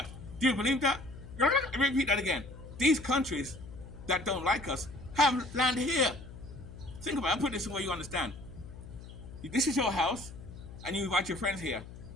Do you believe that? Repeat that again. These countries that don't like us have land here. Think about it. I'll put this in where you understand. This is your house, and you invite your friends here.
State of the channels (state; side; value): noise; left; hum, 14 dB below the sound